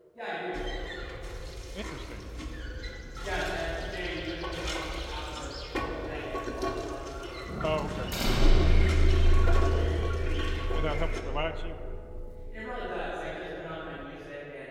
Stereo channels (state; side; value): identical; both; correlation 1.00